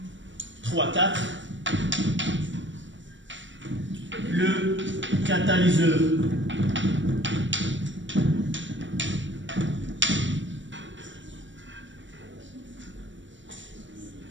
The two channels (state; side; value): late; left; 0.54 ms